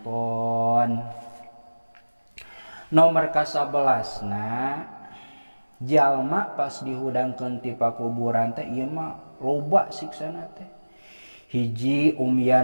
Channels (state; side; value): inverted; both; correlation -1.00